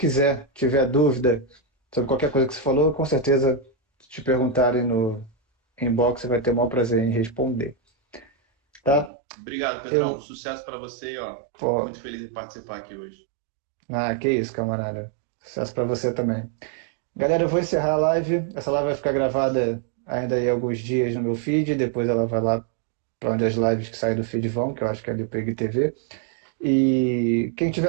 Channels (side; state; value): left; drops out; at 9.1 s